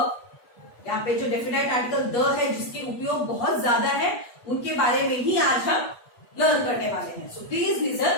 यहाँ पे जो डेफिनाइट आर्टिकल द है जिसके उपयोग बहुत ज्यादा है उनके बारे में ही आज हम लर्न करने वाले हैं. So please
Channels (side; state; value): right; late; 8.2 ms